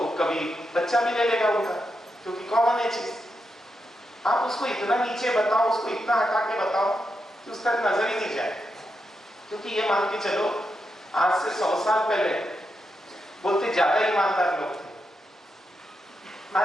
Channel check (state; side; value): normal; both; correlation 0.85